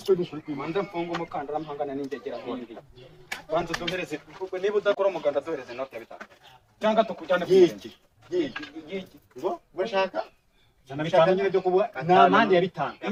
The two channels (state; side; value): identical; both; correlation 1.00